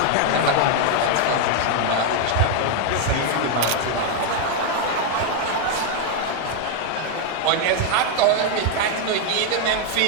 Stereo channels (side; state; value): both; different; correlation 0.01